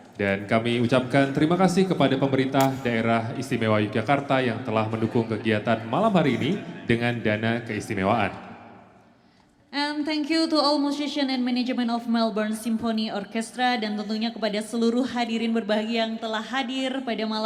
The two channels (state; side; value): identical; both; correlation 1.00